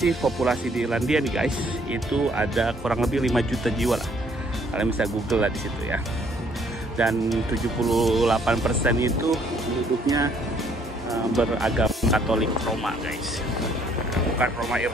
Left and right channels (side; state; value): both; normal; correlation 0.64